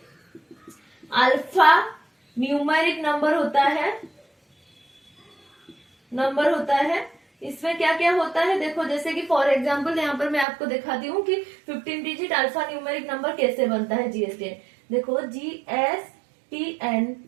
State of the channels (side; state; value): left; drops out; at 10.5 s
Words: अल्फा न्यूमेरिक नंबर होता है। इसमें क्या क्या होता है देखो, जैसे कि फॉर एग्जांपल यहाँ पर मैं आपको दिखाती हूँ कि 15 डिजिट अल्फा न्यूमेरिक नंबर कैसे बनता है जीएसटीएन। देखो GSTNIN,